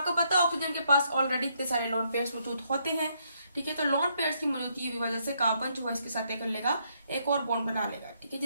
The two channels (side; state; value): both; inverted; correlation -0.74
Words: पता है ऑक्सीजन के पास ऑलरेडी इतने सारे लोन पेयर्स मौजूद होते हैं। ठीक है, तो लोन पेयर्स की मौजूदगी की वजह से कार्बन जो है इसके साथ कर लेगा, एक और बॉन्ड बना लेगा। ठीक है,